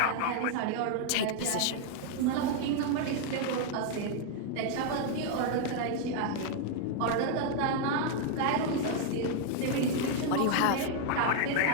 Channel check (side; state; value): both; different; correlation 0.00